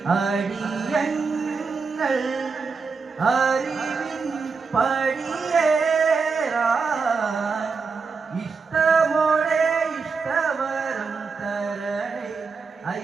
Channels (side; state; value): left; quieter; 4.9 dB